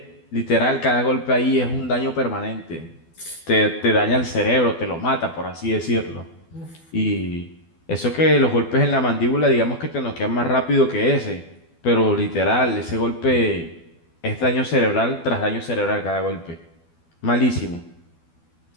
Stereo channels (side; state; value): right; late; 12 ms